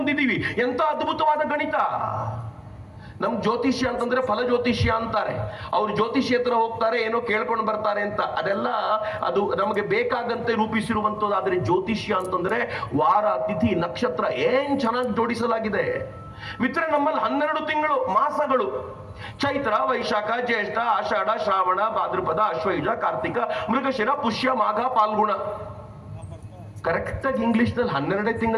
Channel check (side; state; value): both; identical; correlation 1.00